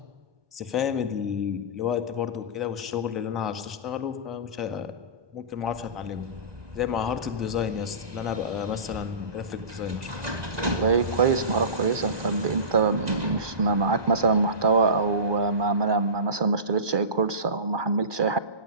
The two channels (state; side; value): late; left; 1.2 ms